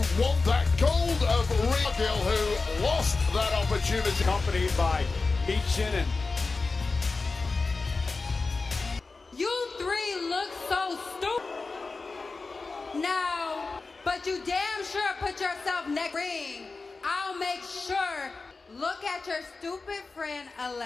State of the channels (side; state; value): right; quieter; 3.9 dB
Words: want that gold of Rhea, who lost that opportunity. Accompanied by Meechin and You three look so stupid now, but you damn sure put yourself next ring. I'll make sure. Look at your stupid friend